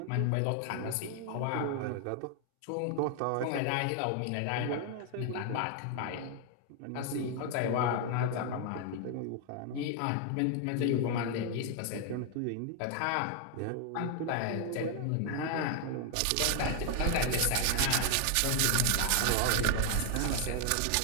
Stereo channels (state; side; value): different; both; correlation 0.00